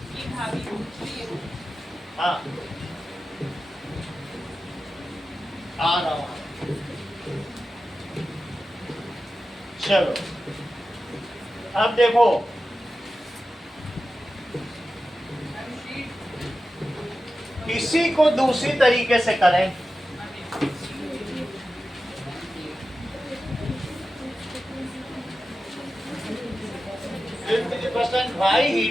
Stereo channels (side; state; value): both; normal; correlation 0.93